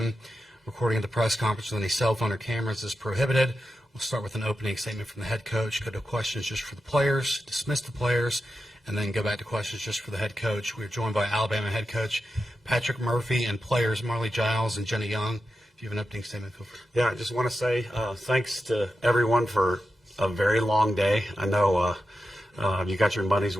Recording of the press conference with any cell phone or cameras is prohibited. We'll start with an opening statement from the head coach, go to questions just for the players, dismiss the players, and then go back to questions just for the head coach. We're joined by Alabama head coach Patrick Murphy and players Marley Giles and Jenna Young. If you have an opening statement, feel free. Yeah, I just want to say thanks to everyone for a very long day. I know you got your money's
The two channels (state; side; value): normal; both; correlation 0.90